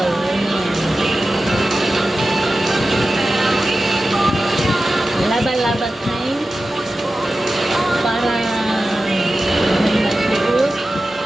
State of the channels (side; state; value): both; normal; correlation 0.94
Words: Laba-laba time para may masuot.